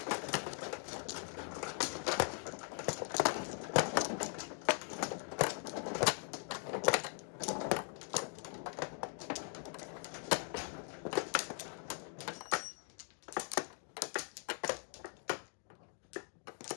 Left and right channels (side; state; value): right; silent; 51 dB below the other